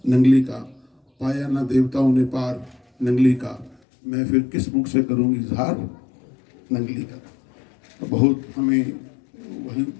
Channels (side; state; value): right; drops out; at 3.8 s